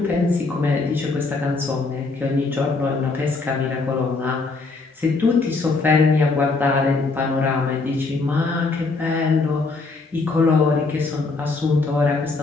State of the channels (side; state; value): right; quieter; 3.8 dB